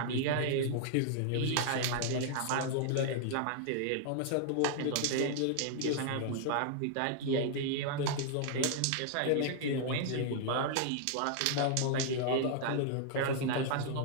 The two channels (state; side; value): different; both; correlation -0.01